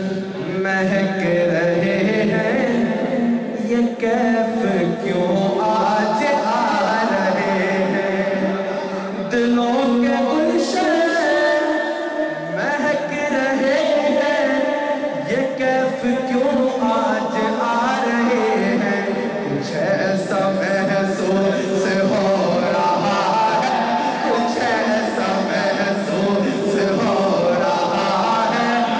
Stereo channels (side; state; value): both; identical; correlation 1.00